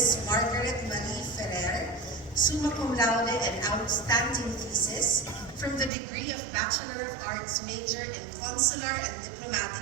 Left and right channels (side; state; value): left; drops out; at 5.9 s